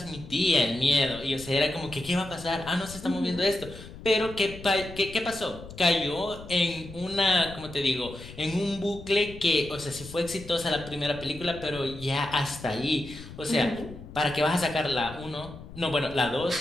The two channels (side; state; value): left; noise; rumble, 15 dB below the sound